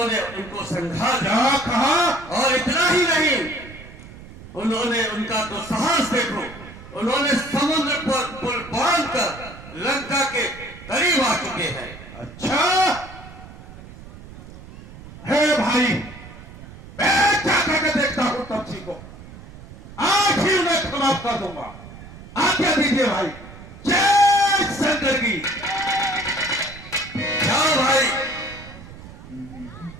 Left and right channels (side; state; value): right; noise; rumble, 17 dB below the sound